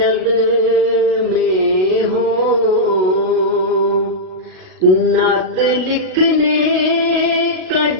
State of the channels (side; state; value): left; late; 38 ms